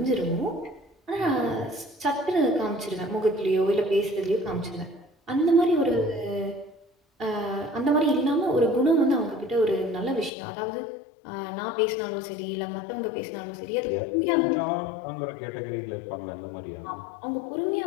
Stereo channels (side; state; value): right; drops out; at 10.3 s